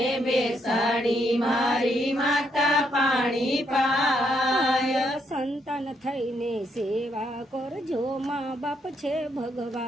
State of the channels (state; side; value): normal; both; correlation 0.75